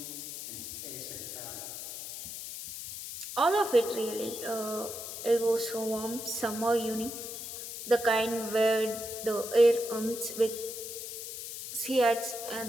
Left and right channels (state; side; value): noise; left; hiss, 8 dB below the sound